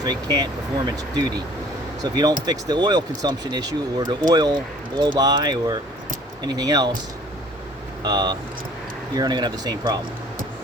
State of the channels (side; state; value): both; normal; correlation 0.52